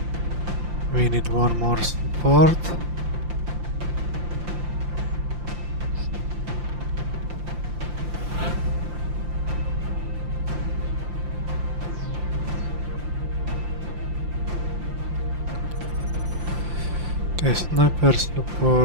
We need one more support. Okay, sniper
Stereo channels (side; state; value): left; late; 5.8 ms